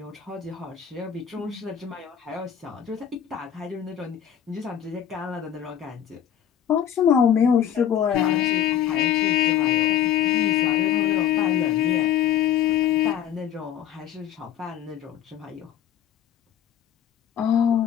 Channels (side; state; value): right; quieter; 9.7 dB